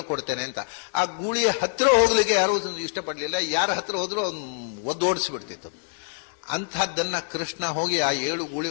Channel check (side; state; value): right; silent; digital silence